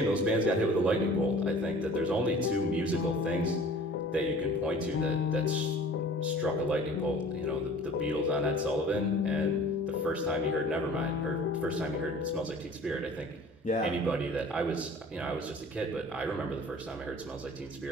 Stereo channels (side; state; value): both; normal; correlation 0.47